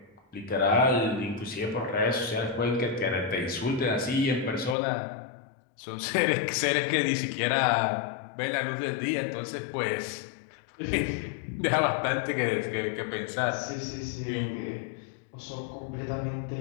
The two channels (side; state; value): right; drops out; at 4.8 s